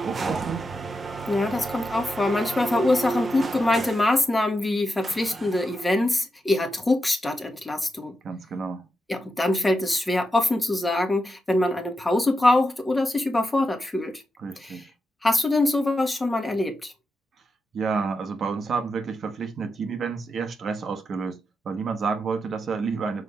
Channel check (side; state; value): both; normal; correlation 0.87